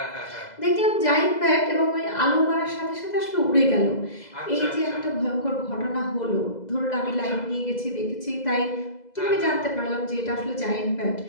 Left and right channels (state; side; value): late; right; 2.0 ms